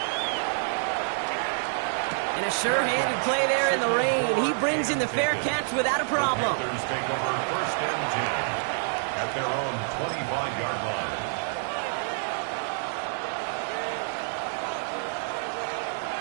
And a sure-handed play there in the rain. He brings in the fair catch without a problem. Panthers take over first and 10 at their own 25-yard line.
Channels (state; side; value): silent; left; 56 dB below the other